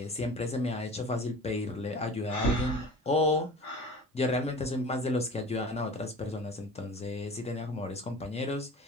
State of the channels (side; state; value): both; normal; correlation 0.40